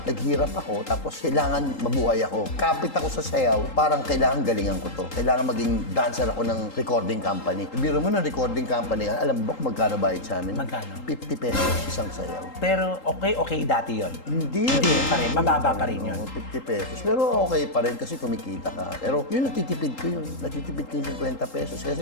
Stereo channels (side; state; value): right; late; 3.8 ms